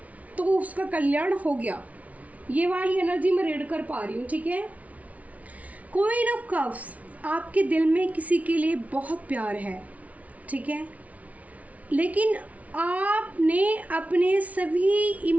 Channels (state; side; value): late; left; 0.068 ms